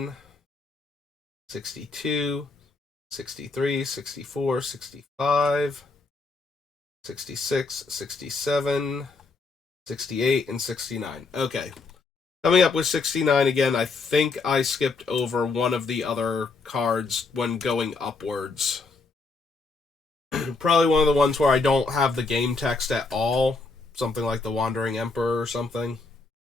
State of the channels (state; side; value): quieter; right; 3.9 dB